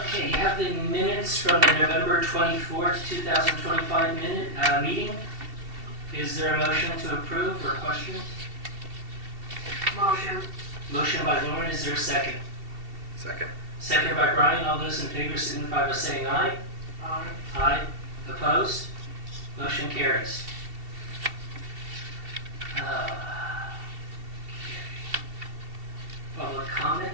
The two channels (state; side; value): late; left; 2.7 ms